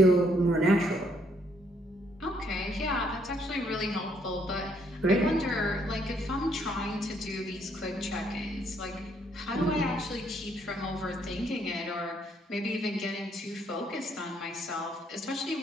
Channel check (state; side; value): normal; both; correlation 0.69